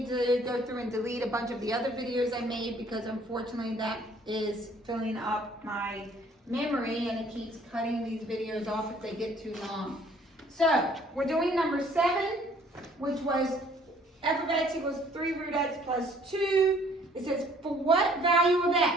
to go through and delete a bunch of the other videos I made because unfortunately that is filling up my memory and it keeps cutting these videos off if they get too long. So, we're doing number 7, which was f of x equals 3 root x plus 2. It says, for what value of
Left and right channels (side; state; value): both; normal; correlation 0.58